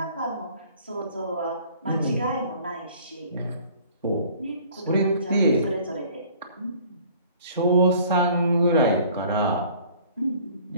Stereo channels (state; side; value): inverted; both; correlation -0.53